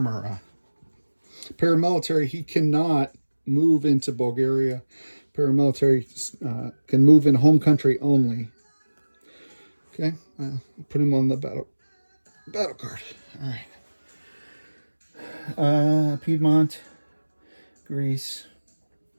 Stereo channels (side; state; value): both; inverted; correlation -1.00